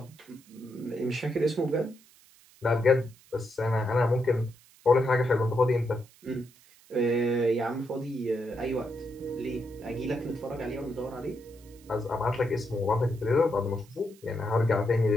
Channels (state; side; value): noise; right; hiss, 27 dB below the sound